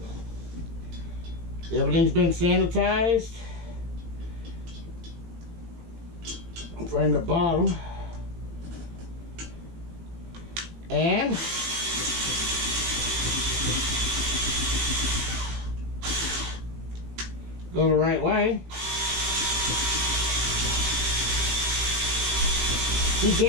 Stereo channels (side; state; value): left; late; 18 ms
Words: Everything's been sanitized. From the bottom. And go the right way.